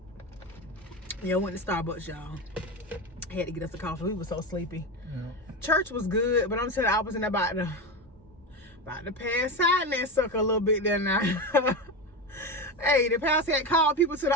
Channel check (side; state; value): both; normal; correlation 0.19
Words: Yeah, I went to Starbucks, y'all. I had to get us a coffee. We were so sleepy. Yeah. Church was good, but I'm telling you, I was in about to pass out in that sucker a little bit there now. Hey, the pastor had called people to